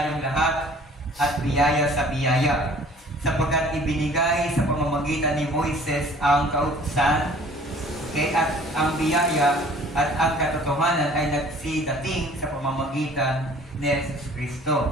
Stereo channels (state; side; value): normal; both; correlation 0.51